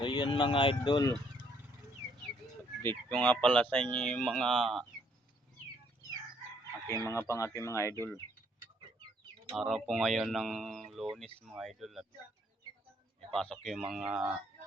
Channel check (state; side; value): normal; both; correlation 0.67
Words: So yun mga idol, update ko nga pala sa inyo yung mga aking mga idol. Araw po ngayon ng Lunes mga idol at ipasok yung mga